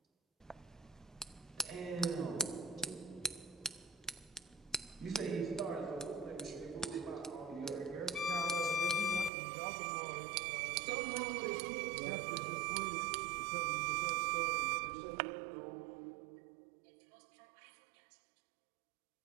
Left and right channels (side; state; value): left; drops out; at 9.3 s